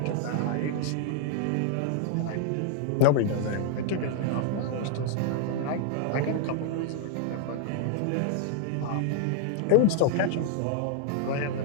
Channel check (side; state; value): both; different; correlation 0.00